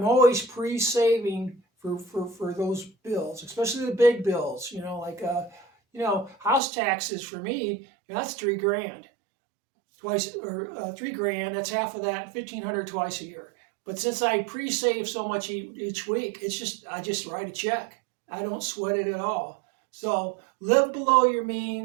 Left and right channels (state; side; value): drops out; left; at 6.6 s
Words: always pre-saving for those bills, especially the big bills, like, house taxes for me, that's $3,000 twice, or $3,000, that's half of that, 1,500 twice a year. But since I pre-save so much each week, I just write a check. I don't sweat it at all. So live below your